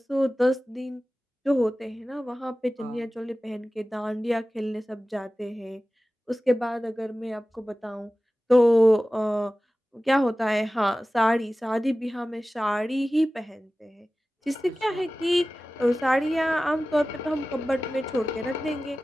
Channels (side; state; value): both; normal; correlation 0.96